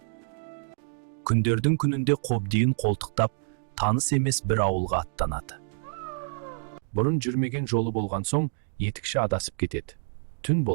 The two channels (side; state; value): left; silent; digital silence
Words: Күндердің күнінде қобдиын қолтықтап, таныс емес бір ауылға аттанады. Бұрын жүрмеген жолы болған соң, етікші адасып кетеді. Түн